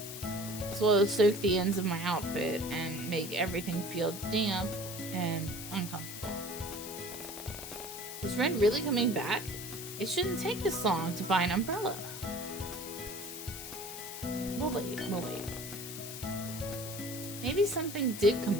soak the ends of my outfit and make everything feel damp and uncomfortable. Is Ren really coming back? It shouldn't take this long to buy an umbrella. We'll wait. Maybe something did come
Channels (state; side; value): noise; left; hiss, 9 dB below the sound